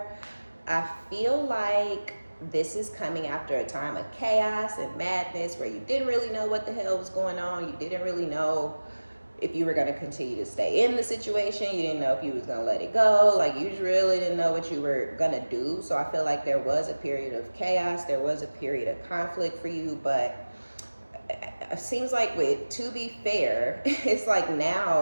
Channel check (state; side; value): inverted; both; correlation -1.00